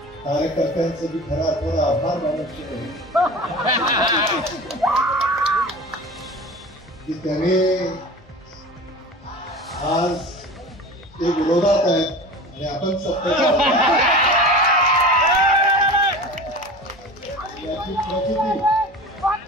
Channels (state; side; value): normal; both; correlation 0.35